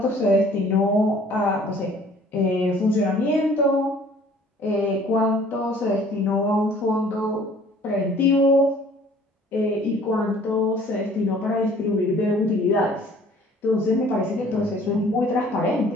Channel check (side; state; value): both; normal; correlation 0.54